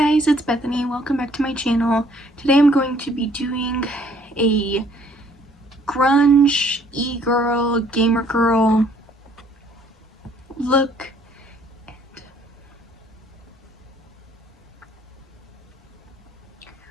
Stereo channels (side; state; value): both; normal; correlation 0.61